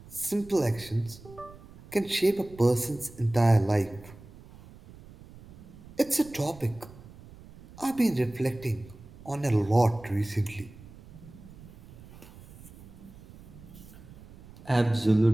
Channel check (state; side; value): noise; right; rumble, 19 dB below the sound